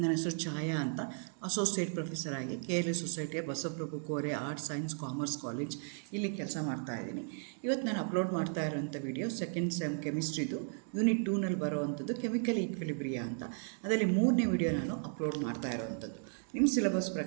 ಹೆಸರು ಛಾಯಾ ಅಂತ. ಅಸೋಸಿಯೇಟ್ ಪ್ರೊಫೆಸರ್ ಆಗಿ KLE ಸೊಸೈಟಿಯ Basavaprabhu Kore arts science commerce college ಇಲ್ಲಿ ಕೆಲಸ ಮಾಡ್ತಾ ಇದ್ದೀನಿ. ಇವತ್ತು ನಾನು ಅಪ್ಲೋಡ್ ಮಾಡ್ತಾ ಇರೋಂಥ ವಿಡಿಯೋ ಸೆಕೆಂಡ್ ಸೆಮ್ ಕೆಮಿಸ್ಟ್ರಿದು ಯೂನಿಟ್ 2ನಲ್ಲಿ ಬರೋವಂಥದ್ದು ಕೆಮಿಕಲ್ ಈಕ್ವಿಲಿಬ್ರಿಯಾ ಅಂತ. ಅದರಲ್ಲಿ 3ನೇ ವಿಡಿಯೋ ನಾನು ಅಪ್ಲೋಡ್ ಮಾಡ್ತಾ ಇರೋವಂಥದ್ದು. ನಿಮ್ಮ ಸಿಲೆಬಸ್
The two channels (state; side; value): silent; left; 54 dB below the other